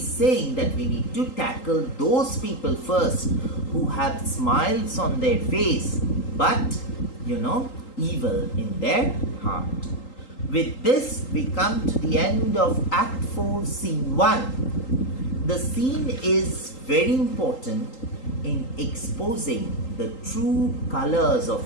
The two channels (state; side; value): late; right; 3.8 ms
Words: saying that we need to tackle those people first who have smiles on their face but evil in their heart. With this we come to the end of Act 4, Scene 1. The scene is very important in exposing the true colors